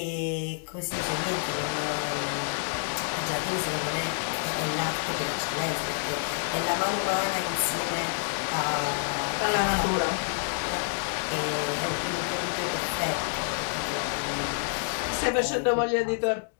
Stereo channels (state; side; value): silent; right; digital silence